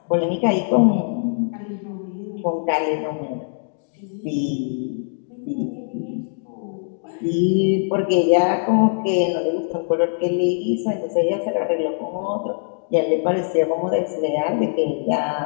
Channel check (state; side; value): silent; right; digital silence